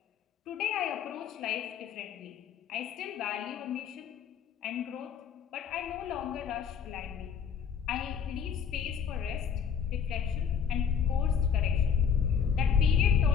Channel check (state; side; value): quieter; right; 7.4 dB